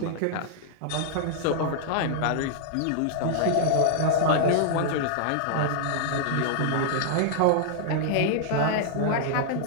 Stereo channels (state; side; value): different; both; correlation -0.01